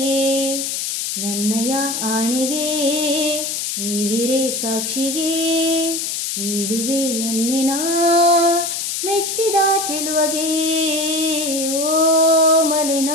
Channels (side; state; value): left; noise; hiss, 2 dB below the sound